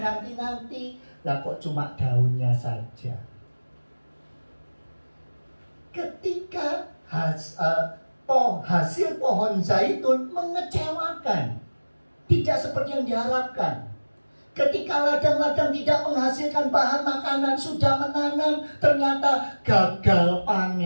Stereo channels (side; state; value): both; inverted; correlation -1.00